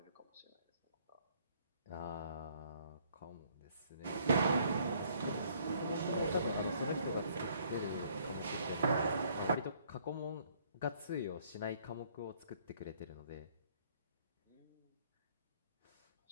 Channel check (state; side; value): inverted; both; correlation -0.63